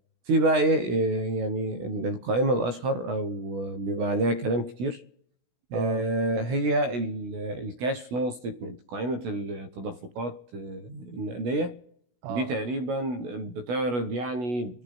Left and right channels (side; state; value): left; late; 16 ms